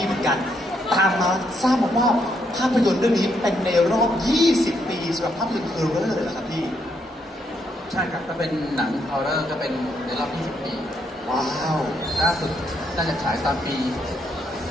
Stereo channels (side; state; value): both; normal; correlation 0.75